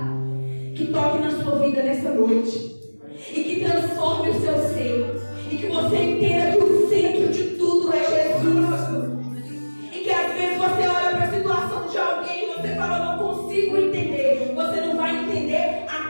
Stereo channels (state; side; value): inverted; both; correlation -1.00